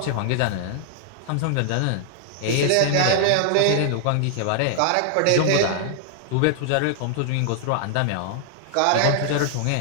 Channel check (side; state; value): both; different; correlation 0.00